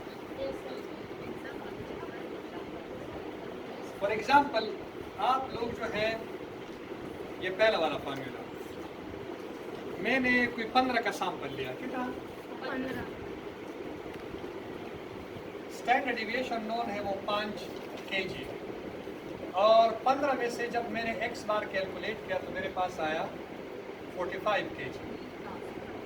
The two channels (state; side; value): identical; both; correlation 1.00